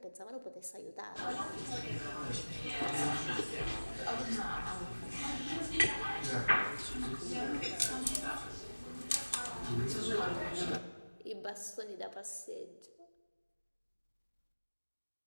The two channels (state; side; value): inverted; both; correlation -1.00